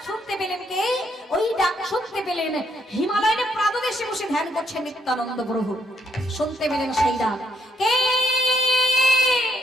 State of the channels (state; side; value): normal; both; correlation 0.74